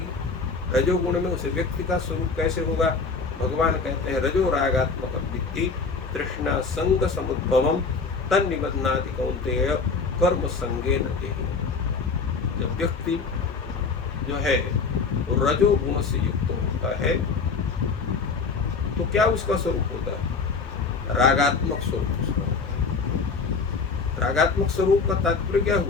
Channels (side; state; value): right; quieter; 4.7 dB